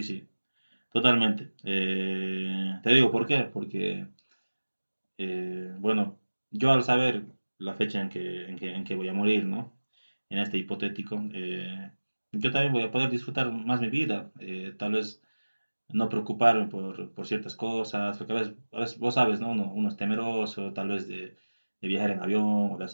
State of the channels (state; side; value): inverted; both; correlation -1.00